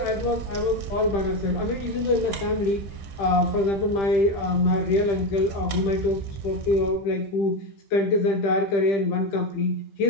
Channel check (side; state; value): right; late; 15 ms